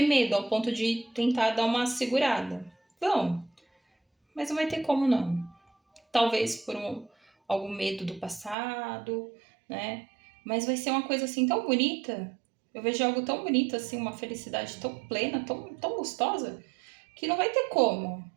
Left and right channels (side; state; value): left; drops out; at 8.6 s